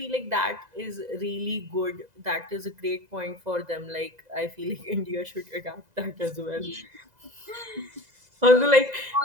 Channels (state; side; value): late; left; 2.0 ms